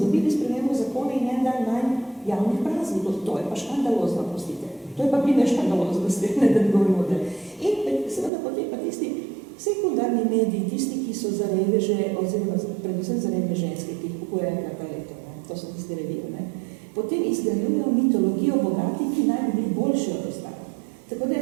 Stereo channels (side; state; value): left; drops out; at 8.3 s